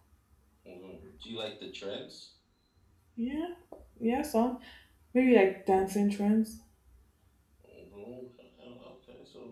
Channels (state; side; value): identical; both; correlation 1.00